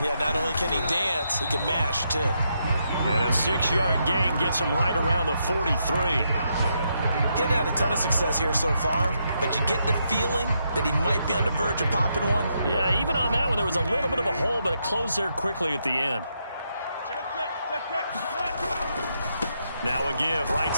Yeah, not only can he dance, he can mash, too. And a 6-yard gain gets him right around the 43. Getting had a ton of success here so far, but you get the feeling that he might be on the verge of popping one. Yeah, even on that one, there was a little bit of a hole, but it closed there quickly at the end. Now a give, right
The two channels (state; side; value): inverted; both; correlation -0.80